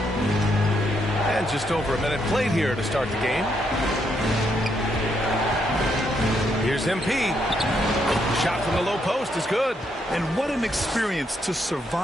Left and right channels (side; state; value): both; normal; correlation 0.76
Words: And just over a minute played here to start the game. Here's MP. Shot from the low post is good. And what an experience to